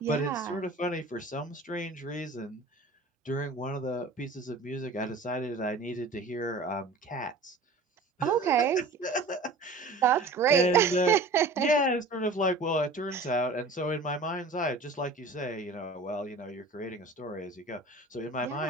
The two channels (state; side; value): quieter; left; 3.2 dB